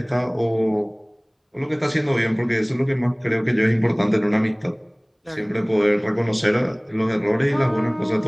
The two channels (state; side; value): identical; both; correlation 1.00